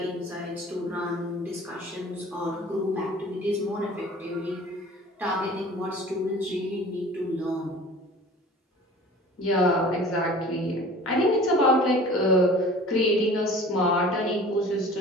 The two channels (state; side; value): normal; both; correlation 0.44